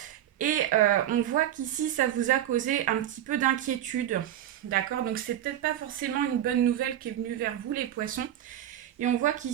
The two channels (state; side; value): quieter; left; 11.8 dB